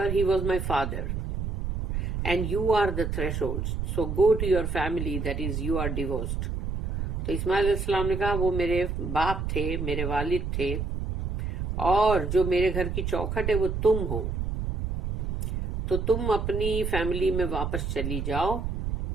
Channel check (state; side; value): noise; right; rumble, 3 dB below the sound